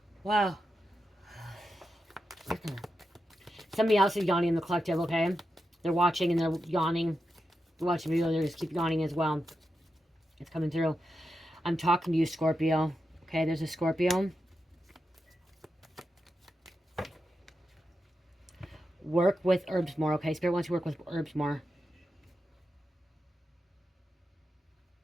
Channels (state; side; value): normal; both; correlation 0.88